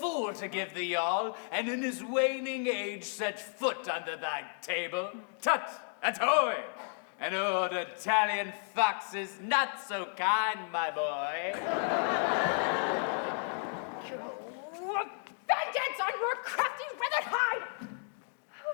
to give thee all, and in his waning age set foot under thy table. Tut, atoy! An old Italian fox is not so kind, my boy. Vengeance on your crafty withered hide!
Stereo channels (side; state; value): right; silent; 55 dB below the other